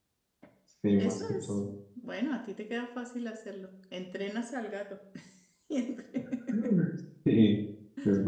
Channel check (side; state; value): both; identical; correlation 1.00